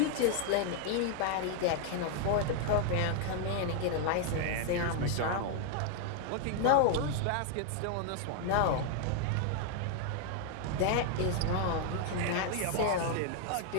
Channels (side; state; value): both; different; correlation 0.00